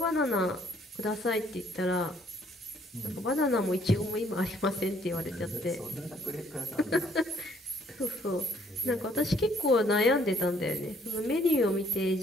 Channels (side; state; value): both; normal; correlation 0.64